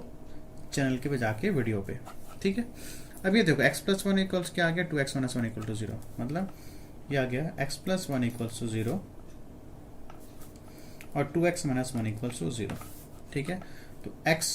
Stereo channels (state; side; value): identical; both; correlation 1.00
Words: चैनल के पे जाके वीडियो पे। ठीक है, अब ये देखो x प्लस 1 इक्वल्स क्या आ गया, 2x माइनस 1 इक्वल टू 0, मतलब ये आ गया x प्लस 1 इक्वल्स टू 0 और 2x माइनस 1 इक्वल्स टू 0। ठीक है, तो x